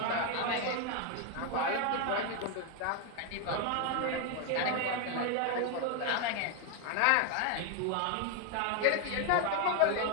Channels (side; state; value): both; different; correlation 0.01